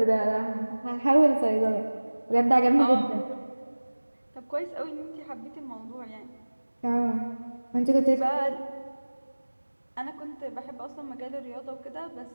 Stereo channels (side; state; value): both; inverted; correlation -1.00